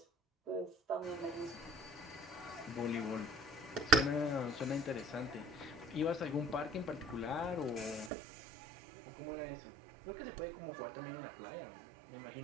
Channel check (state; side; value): drops out; left; at 8.1 s